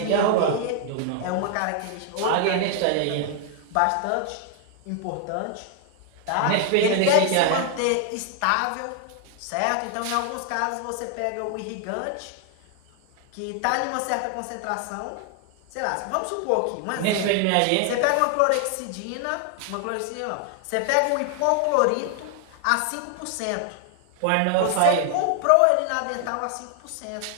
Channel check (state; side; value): different; both; correlation 0.00